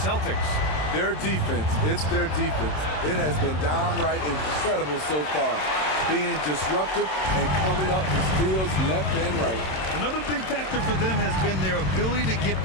Their defense, it's their defense. It has been downright incredible so far. Being disruptive and coming up with steals left and right. Another big factor for them has been their ability to get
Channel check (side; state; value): right; late; 27 ms